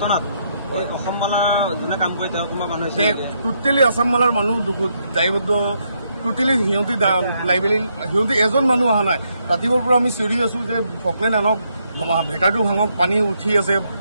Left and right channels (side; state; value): both; inverted; correlation -0.77